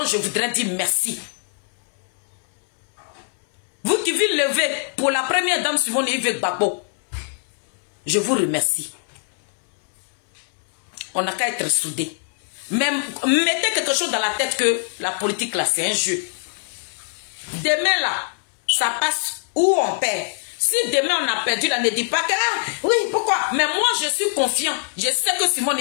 je voudrais dire merci. Vous qui vous levez pour la première dame Simone Yves Gbagbo, je vous remercie. On n'a qu'à être soudés. Mais mettez quelque chose dans la tête que la politique là c'est un jeu. Demain là, ça passe où on perd. Si demain on a perdu là, ne dit pas que oui, pourquoi? Mais moi je suis confiant. Je sais que Simone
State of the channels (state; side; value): silent; right; 64 dB below the other